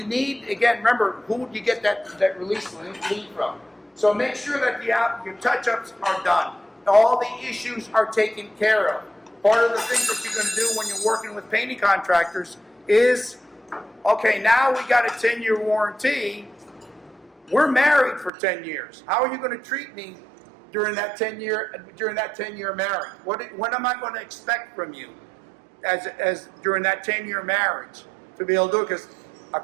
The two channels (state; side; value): drops out; left; at 18.3 s